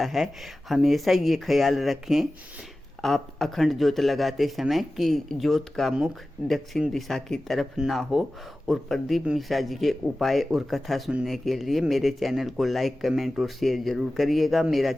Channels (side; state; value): both; normal; correlation 0.96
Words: है। हमेशा ये ख्याल रखें आप अखंड ज्योत लगाते समय कि ज्योत का मुख दक्षिण दिशा की तरफ ना हो। और प्रदीप मिश्रा जी के उपाय और कथा सुनने के लिए मेरे चैनल को लाइक कमेंट और शेयर जरूर करिएगा। मेरा